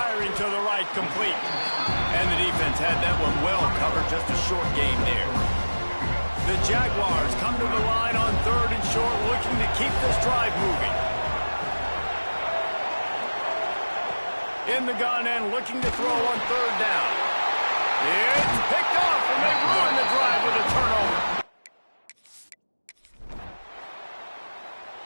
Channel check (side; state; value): both; inverted; correlation -1.00